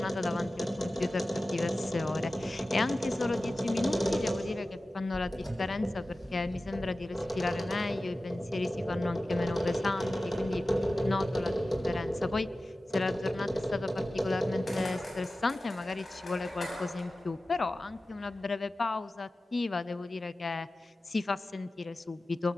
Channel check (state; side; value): normal; both; correlation 0.96